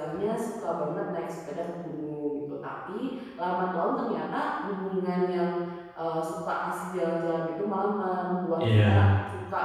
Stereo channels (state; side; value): identical; both; correlation 1.00